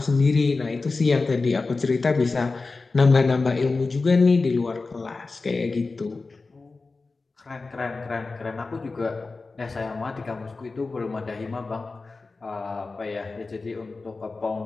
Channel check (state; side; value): quieter; right; 3.8 dB